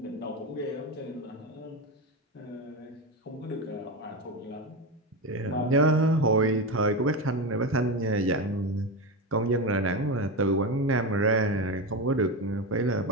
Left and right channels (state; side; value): normal; both; correlation 0.17